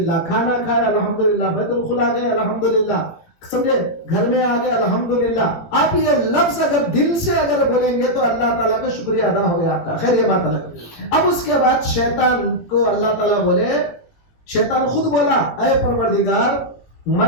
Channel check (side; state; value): right; late; 18 ms